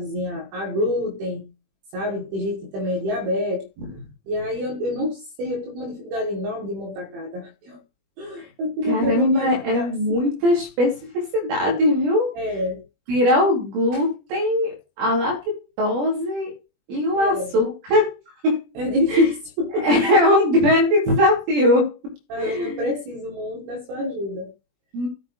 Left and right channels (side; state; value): left; late; 20 ms